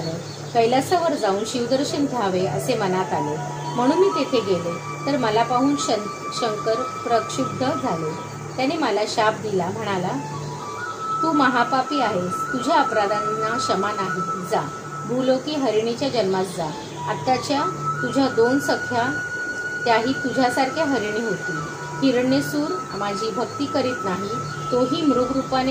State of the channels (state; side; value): identical; both; correlation 1.00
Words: कैलासावर जाऊन शिवदर्शन घ्यावे असे मनात आले. म्हणून मी तेथे गेले तर मला पाहून शंकर प्रक्षुब्ध झाले. त्याने मला शाप दिला. म्हणाला, तू महापापी आहेस. तुझ्या अपराधांना क्षमा नाही. जा, भूलोकी हरिणीच्या जन्मास जा. आत्ताच्या तुझ्या 2 सख्या त्याही तुझ्यासारख्या हरिणी होती. हिरण्यसूर माझी भक्ती करीत नाही. तोही